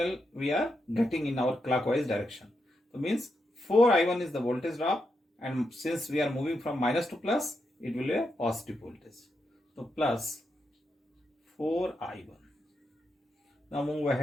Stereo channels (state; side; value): normal; both; correlation 0.84